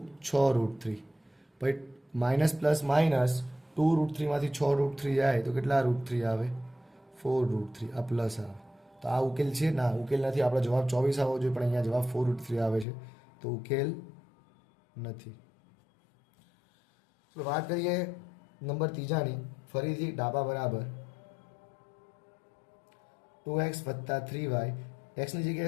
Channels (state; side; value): drops out; right; at 12.9 s